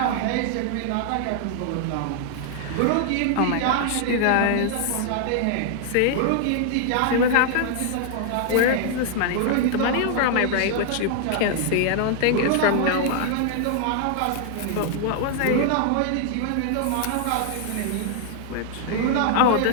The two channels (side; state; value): both; different; correlation 0.00